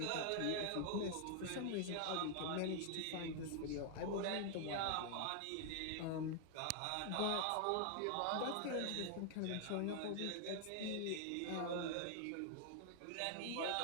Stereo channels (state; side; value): different; both; correlation 0.00